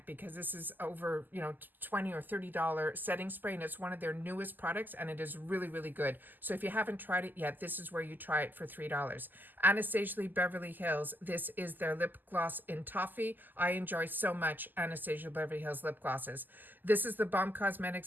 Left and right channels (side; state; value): left; late; 0.087 ms